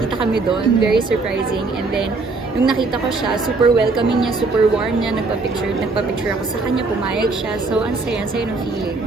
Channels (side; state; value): left; quieter; 3.7 dB